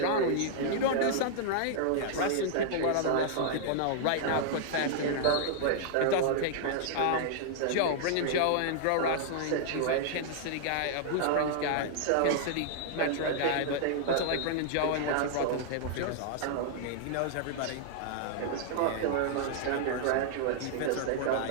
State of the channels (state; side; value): different; both; correlation -0.01